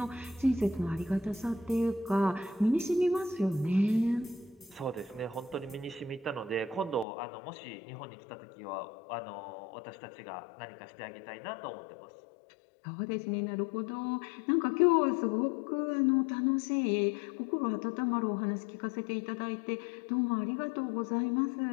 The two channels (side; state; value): right; drops out; at 7.1 s